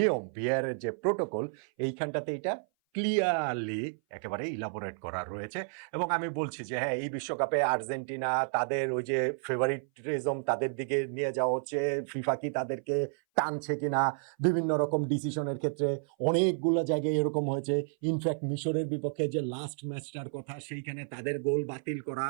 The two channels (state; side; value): silent; left; 56 dB below the other